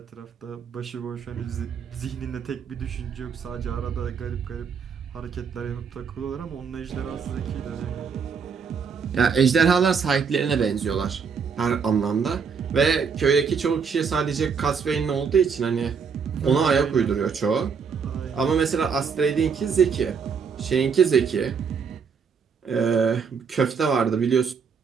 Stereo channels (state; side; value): quieter; left; 6.1 dB